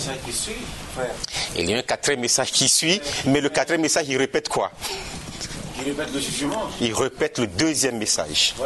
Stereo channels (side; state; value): both; identical; correlation 1.00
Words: Il y a un 4e message qui suit, mais le 4e message il répète quoi? Il répète le jugement. Il répète le 2e message.